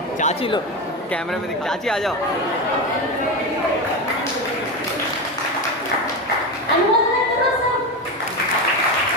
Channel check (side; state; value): both; normal; correlation 0.18